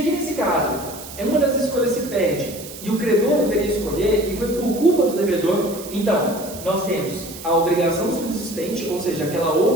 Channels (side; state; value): right; noise; hiss, 14 dB below the sound